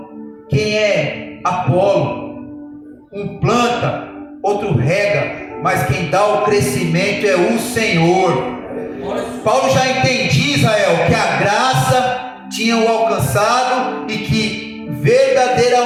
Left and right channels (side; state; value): both; identical; correlation 1.00